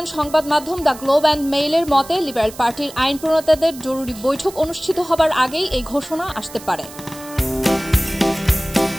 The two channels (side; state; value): right; noise; hiss, 17 dB below the sound